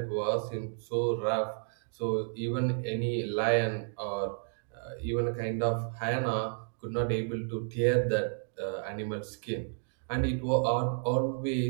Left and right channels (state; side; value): silent; left; digital silence